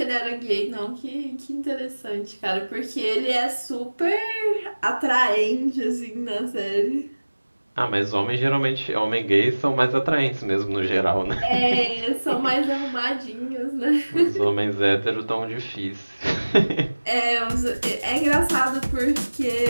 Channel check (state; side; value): inverted; both; correlation -1.00